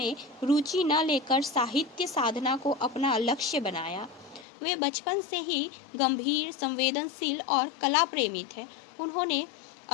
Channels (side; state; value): right; drops out; at 4.5 s